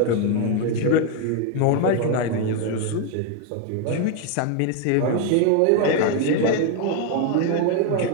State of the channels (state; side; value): different; both; correlation 0.01